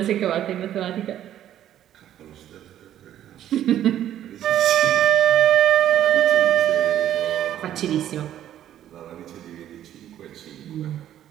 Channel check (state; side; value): quieter; left; 11.5 dB